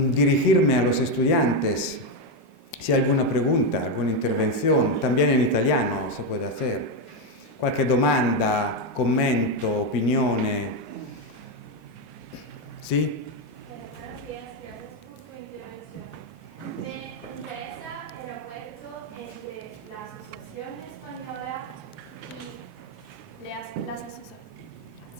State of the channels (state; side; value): normal; both; correlation 0.07